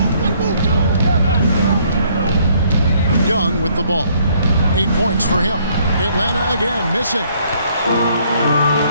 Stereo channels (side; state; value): both; inverted; correlation -0.65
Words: Young with the ball. 8 points for him. Atlanta again missing.